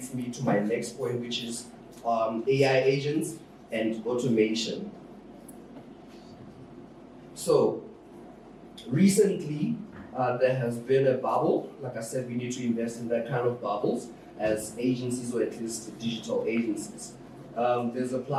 me to my next point, which is AI agents and automation. So recently, there has been a bubble. Like I said, we need to invest in that kind of bubbles as agencies, or at least digital agencies. There's a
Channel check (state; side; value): identical; both; correlation 1.00